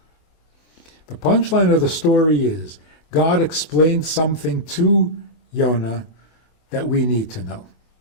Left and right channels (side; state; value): right; late; 24 ms